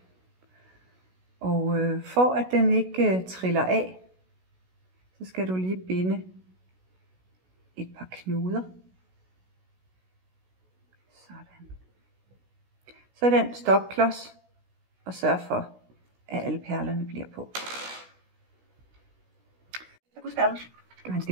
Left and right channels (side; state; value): left; late; 16 ms